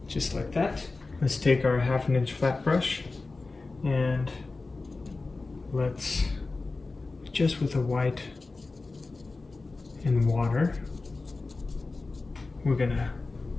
just like that. Let's take our 1/2 inch flat brush and let's, just with the white and water, we're going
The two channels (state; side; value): quieter; right; 3.6 dB